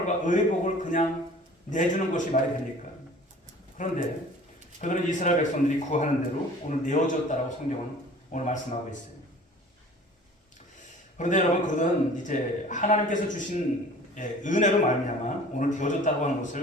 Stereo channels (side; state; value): both; normal; correlation 0.46